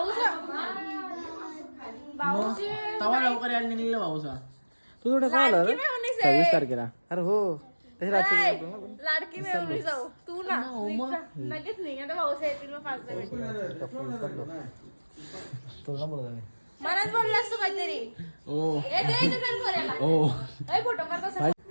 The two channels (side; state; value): both; inverted; correlation -1.00